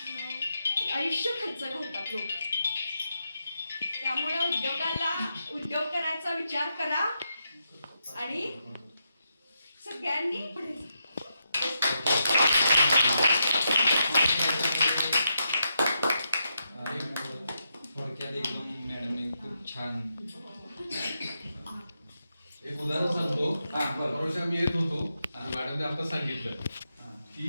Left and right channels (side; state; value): both; inverted; correlation -0.84